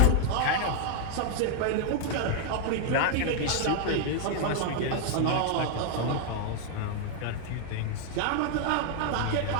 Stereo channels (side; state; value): both; different; correlation 0.00